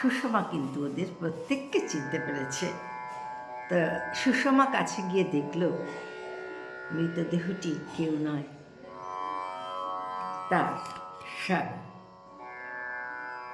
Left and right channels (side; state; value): both; identical; correlation 1.00